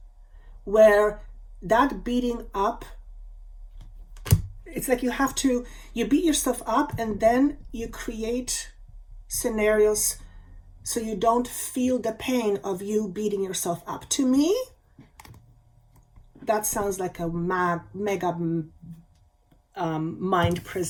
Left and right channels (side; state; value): both; identical; correlation 1.00